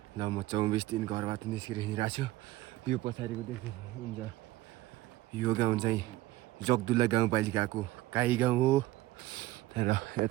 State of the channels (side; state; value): left; quieter; 17.2 dB